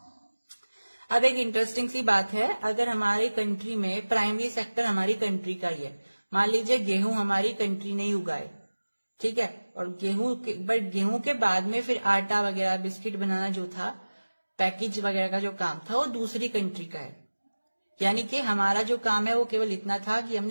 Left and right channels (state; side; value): inverted; both; correlation -1.00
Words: अब एक इंटरेस्टिंग सी बात है, अगर हमारी कंट्री में प्राइमरी सेक्टर हमारी कंट्री का ही है, मान लीजिए गेहूं हमारी कंट्री ने ही उगाए, ठीक है, और गेहूं के बाद में फिर आटा वगैरह बिस्किट बनाना जो था, पैकेज वगैरह का जो काम था वो दूसरी कंट्री का है। यानी कि हमारा जो काम है वो केवल इतना था कि